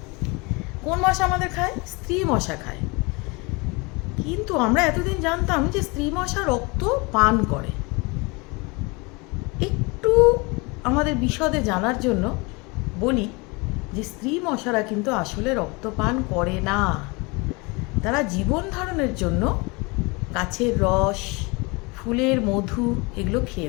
কোন মশা আমাদের খায়? স্ত্রী মশা খায়। কিন্তু আমরা এতদিন জানতাম যে স্ত্রী মশা রক্ত পান করে। একটু আমাদের বিশদে জানার জন্য বলি যে স্ত্রী মশারা কিন্তু আসলে রক্ত পান করে না। তারা জীবন ধারণের জন্য গাছের রস, ফুলের মধু এগুলো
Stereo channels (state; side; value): quieter; right; 27.5 dB